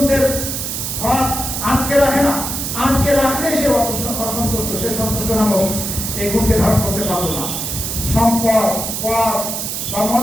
হক আটকে রাখে না, আটকে রাখলে সে অসন্তুষ্ট, সে সন্তুষ্ট নামক এই গুণকে ধারণ করতে পারল না। সম্পদ, পদ বা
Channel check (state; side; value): noise; right; hiss, 3 dB below the sound